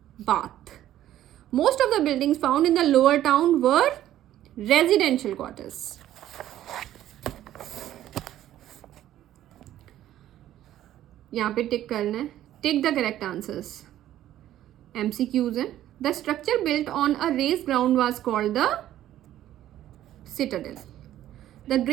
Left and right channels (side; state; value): left; quieter; 12.7 dB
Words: bath. Most of the buildings found in the lower town were residential quarters. यहाँ पे टिक करना है, tick the correct answers. MCQs हैं. The structure built on a raised ground was called the citadel. The